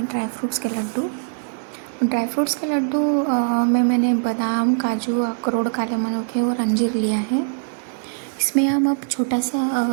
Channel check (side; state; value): left; silent; 60 dB below the other